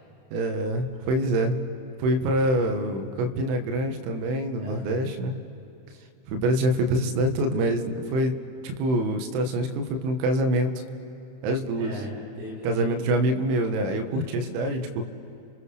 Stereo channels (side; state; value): left; late; 31 ms